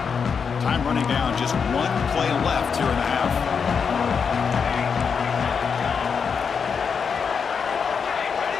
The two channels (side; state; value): right; quieter; 6.2 dB